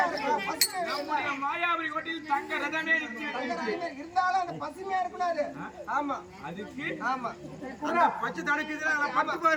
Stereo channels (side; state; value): both; identical; correlation 1.00